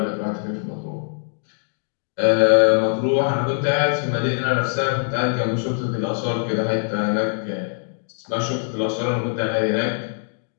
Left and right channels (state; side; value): silent; right; digital silence